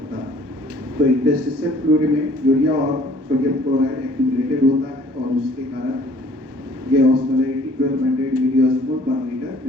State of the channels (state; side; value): late; left; 1.2 ms